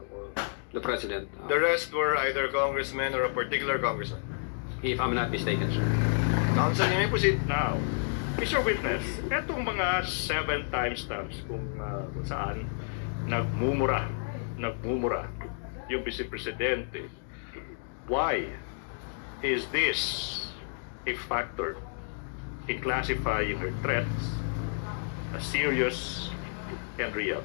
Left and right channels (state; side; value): silent; right; digital silence